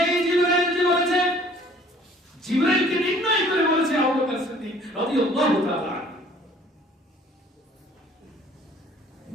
জিবরাইল যে বলেছে, জিবরাইলকে নির্ণয় করে বলেছে আবু বকর সিদ্দিক রাদিয়াল্লাহু তাআলা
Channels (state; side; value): normal; both; correlation 0.54